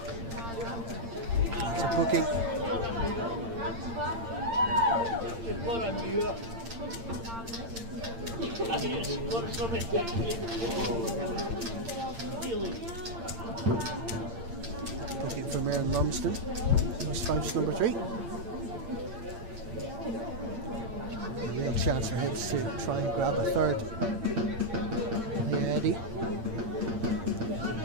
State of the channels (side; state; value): left; late; 8.8 ms